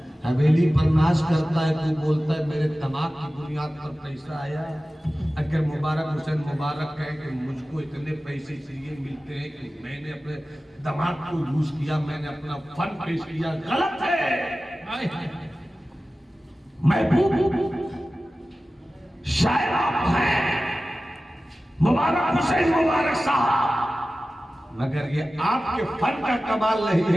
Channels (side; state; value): both; normal; correlation 0.95